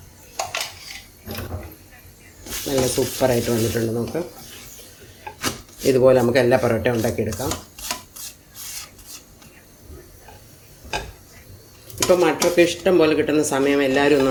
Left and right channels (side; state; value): both; identical; correlation 1.00